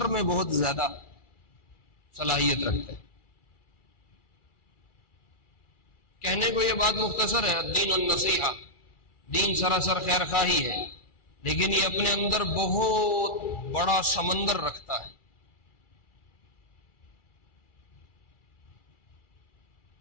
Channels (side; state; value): right; late; 2.4 ms